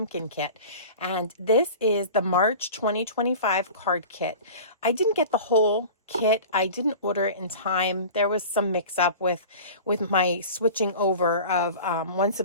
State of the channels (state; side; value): inverted; both; correlation -0.37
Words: kit. And this is the March 2025 card kit. I didn't get the whole kit. I didn't order it in time. There was some mix up with my switching over of one